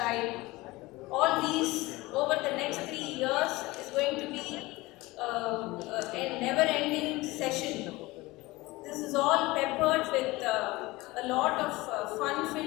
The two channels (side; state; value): right; quieter; 20.9 dB